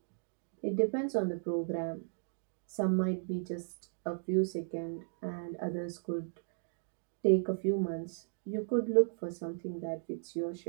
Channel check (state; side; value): silent; left; digital silence